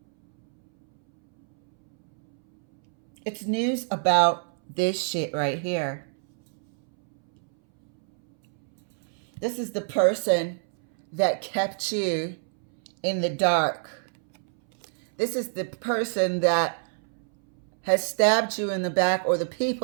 It's news about this shit right here. This is the person that kept you in the dark. This is the person that has stabbed you in the back, or the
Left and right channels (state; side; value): silent; left; 61 dB below the other